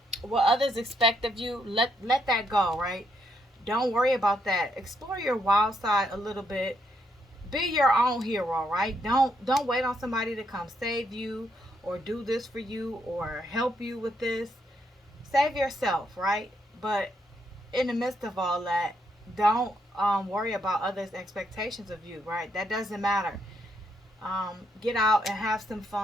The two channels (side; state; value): both; normal; correlation 0.76